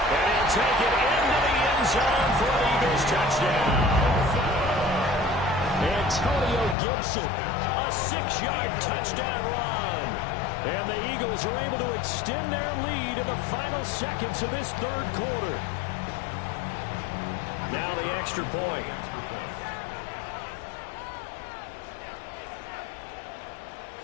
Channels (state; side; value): drops out; right; at 6.8 s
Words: he'll take it into the end zone for an Eagles touchdown. Antonio Gibson, a 6-yard touchdown run. And the Eagles are able to extend their lead in the final seconds of this 3rd quarter. Now the extra point.